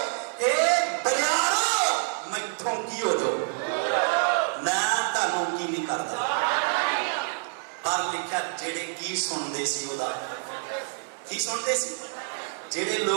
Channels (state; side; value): silent; left; 60 dB below the other